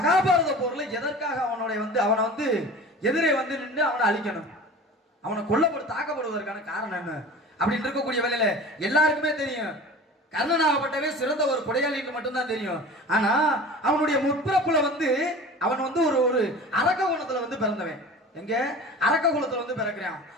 போர்ல எதற்காக அவனை வந்து எதிரே வந்து நின்று அவனை அழிக்கணும், அவனை தாக்கப்படுவதற்கான காரணம் என்ன அப்படின்னு இருக்கக்கூடிய வேலையில எல்லாருக்குமே தெரியும் கர்ணனாகப்பட்டவே சிறந்த ஒரு கொடையாளின்னு மட்டும்தான் தெரியும். ஆனா அவனுடைய முற்பிறப்புல அவன் ஒரு அரக்க குலத்துல பிறந்தவன். எங்க அரக்க குலத்துல பிறக்கிறான்.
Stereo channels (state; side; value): normal; both; correlation 0.38